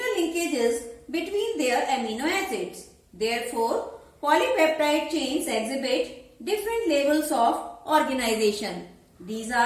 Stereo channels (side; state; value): both; identical; correlation 1.00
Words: linkages between their amino acids. Therefore, polypeptide chains exhibit different levels of organization. These